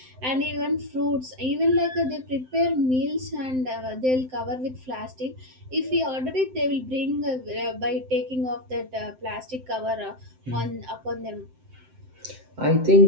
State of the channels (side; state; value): left; late; 7.8 ms